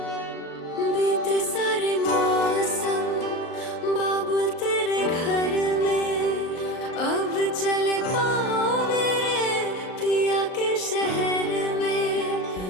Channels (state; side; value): late; right; 38 ms